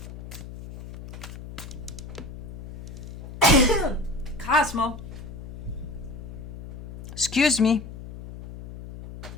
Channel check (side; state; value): left; noise; hum, 12 dB below the sound